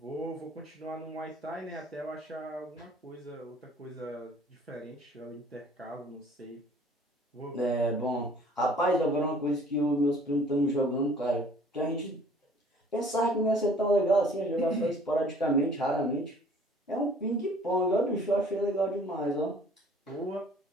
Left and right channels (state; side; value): normal; both; correlation 0.53